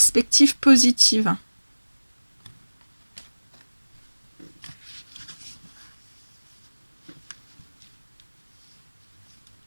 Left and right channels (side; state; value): both; inverted; correlation -1.00